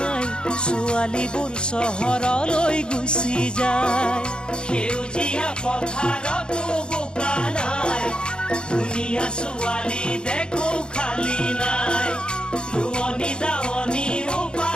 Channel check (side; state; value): right; late; 0.050 ms